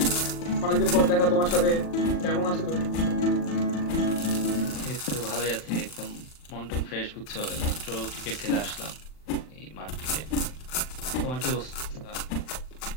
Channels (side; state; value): right; late; 39 ms